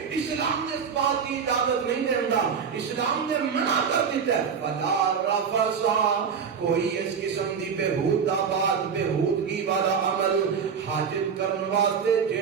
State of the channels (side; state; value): left; quieter; 6.6 dB